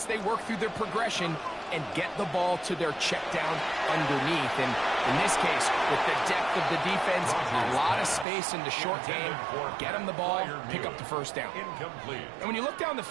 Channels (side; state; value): left; drops out; at 8.2 s